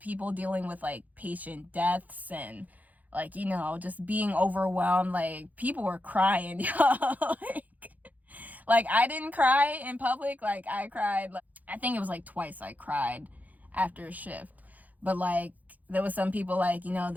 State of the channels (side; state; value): left; late; 0.080 ms